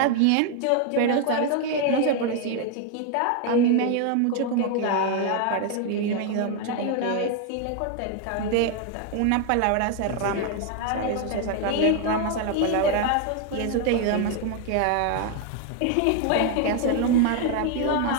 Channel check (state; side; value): different; both; correlation 0.01